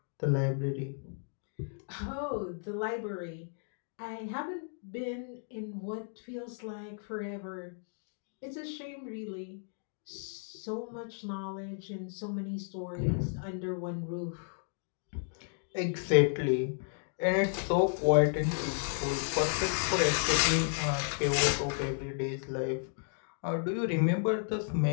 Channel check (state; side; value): silent; right; digital silence